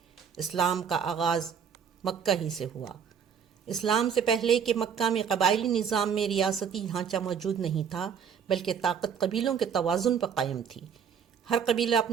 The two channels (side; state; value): left; quieter; 7.3 dB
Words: اسلام کا آغاز مکہ ہی سے ہوا۔ اسلام سے پہلے کہ مکہ میں قبائلی نظام میں ریاستی ڈھانچہ موجود نہیں تھا، بلکہ طاقت قبیلوں کے توازن پر قائم تھی۔ ہر قبیلہ